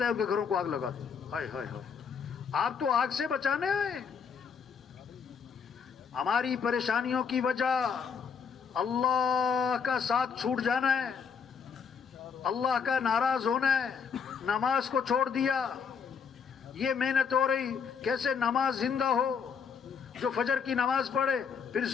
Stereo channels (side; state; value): right; quieter; 6.4 dB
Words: ہے ان کے گھروں کو آگ لگا دوں. ہائے ہائے ہائے, آپ تو آگ سے بچانے آئے. ہماری پریشانیوں کی وجہ اللہ کا ساتھ چھوٹ جانا ہے, اللہ کا ناراض ہونا ہے. نماز کو چھوڑ دیا, یہ محنت ہو رہی کیسے نماز زندہ ہو. جو فجر کی نماز پڑھے پھر